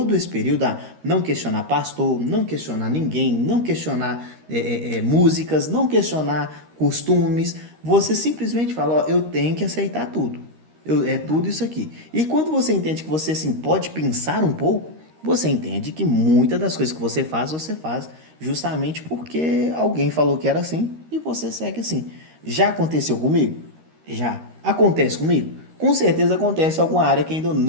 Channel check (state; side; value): late; left; 13 ms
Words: esse período a não questionar pastor, não questionar ninguém, não questionar músicas, não questionar costumes. Você simplesmente fala, ó, eu tenho que aceitar tudo. É tudo isso aqui. E quando você entende que você assim, pode pensar um pouco, você entende que muitas das coisas que você faz justamente porque alguém falou que era assim e você segue assim. Já aconteceu comigo? Já. Acontece comigo? Com certeza acontece em alguma área que ainda